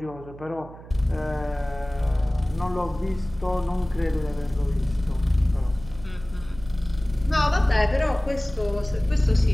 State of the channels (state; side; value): noise; right; hum, 17 dB below the sound